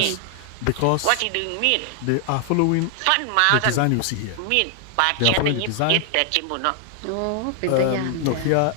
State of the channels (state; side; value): different; both; correlation 0.00